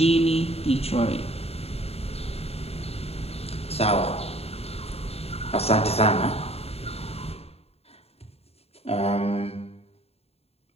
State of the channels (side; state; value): right; late; 0.29 ms